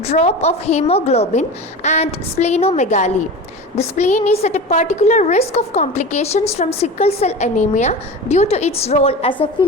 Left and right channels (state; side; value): normal; both; correlation 0.30